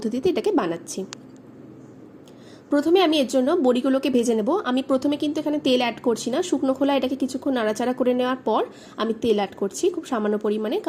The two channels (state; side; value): identical; both; correlation 1.00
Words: এটাকে বানাচ্ছি। প্রথমে আমি এর জন্য বড়িগুলোকে ভেজে নেব। আমি প্রথমে কিন্তু এখানে তেল অ্যাড করছি না, শুকনো খোলা এটাকে কিছুক্ষণ নাড়াচাড়া করে নেওয়ার পর আমি তেল অ্যাড করছি খুব সামান্য পরিমাণে,